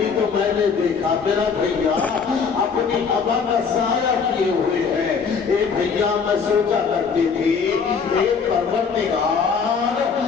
تو میں نے دیکھا میرا بھیا اپنی ابا کا سایہ کیے ہوئے ہے۔ اے بھیا میں سوچا کرتی تھی اے پروردگار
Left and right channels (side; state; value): right; quieter; 5.8 dB